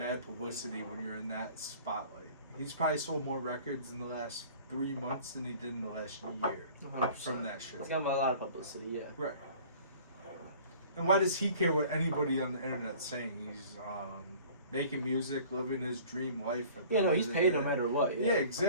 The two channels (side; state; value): both; inverted; correlation -0.48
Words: publicity when you're in that spotlight. He's probably sold more records in the last 3 months than he did in the last year 100%. from that shit. It's got a lot of publicity, yeah. Right. And why does he care what anybody on the internet's saying? He's making music, living his dream life. Yeah, no, he's paid no matter what. Yeah,